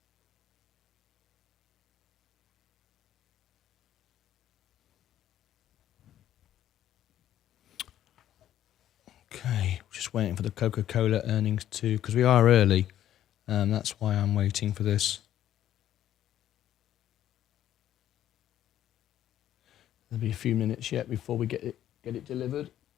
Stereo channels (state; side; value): quieter; right; 11.9 dB